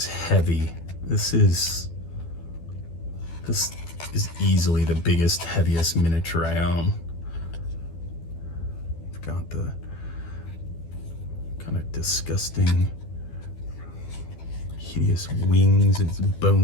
heavy. This is easily the biggest, heaviest miniature I own. I've got the kind of disgusting, hideous wings, its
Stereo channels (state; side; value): late; right; 12 ms